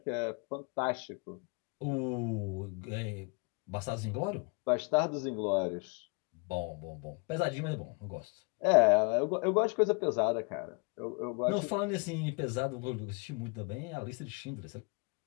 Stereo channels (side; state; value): right; quieter; 32.6 dB